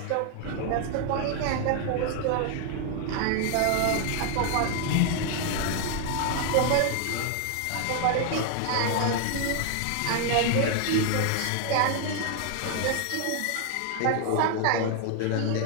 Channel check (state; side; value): different; both; correlation 0.00